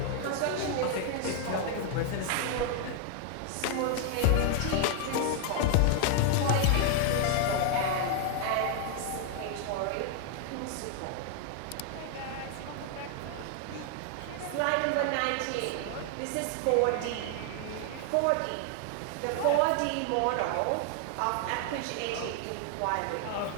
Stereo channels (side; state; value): both; different; correlation 0.00